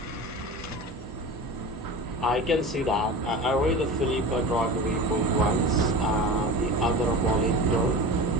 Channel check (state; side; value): normal; both; correlation 0.32